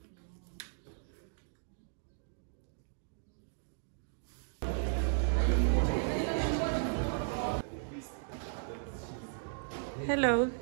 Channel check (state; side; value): silent; left; digital silence